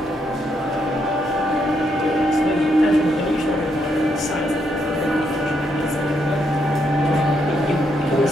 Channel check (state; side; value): normal; both; correlation 0.77